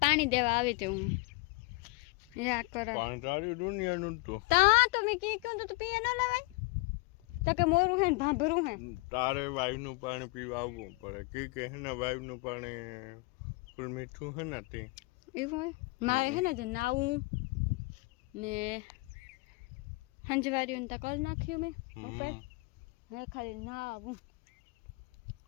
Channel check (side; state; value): right; quieter; 26.4 dB